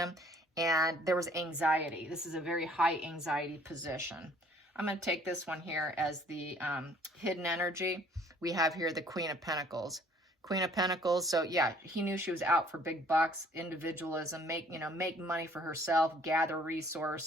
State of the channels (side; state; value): both; normal; correlation 0.58